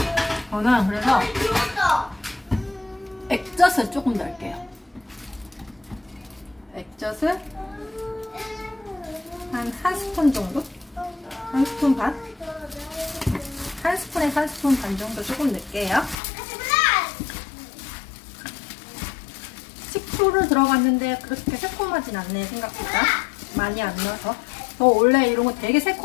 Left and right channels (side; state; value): right; drops out; at 16.2 s